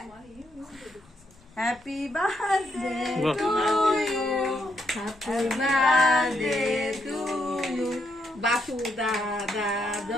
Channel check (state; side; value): noise; left; rumble, 29 dB below the sound